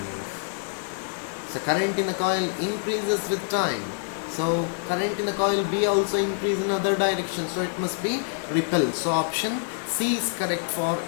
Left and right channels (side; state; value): right; silent; digital silence